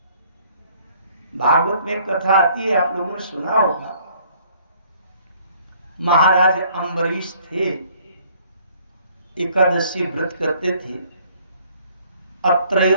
भागवत में कथा आती है, आप लोगों ने सुना होगा। महाराज अम्बरीश थे, एकादशी व्रत करते थे। अब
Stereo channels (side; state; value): both; inverted; correlation -0.60